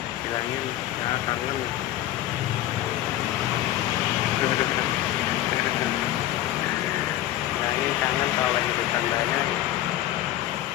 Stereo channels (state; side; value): quieter; right; 13.7 dB